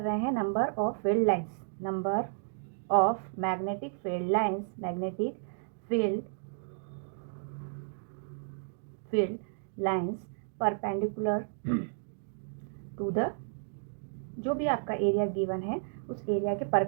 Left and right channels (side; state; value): left; silent; digital silence